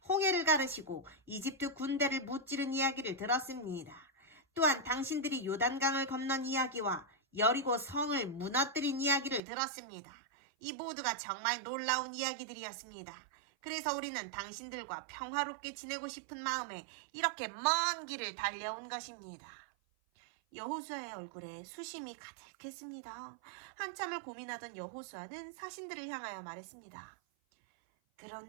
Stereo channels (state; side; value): drops out; left; at 9.4 s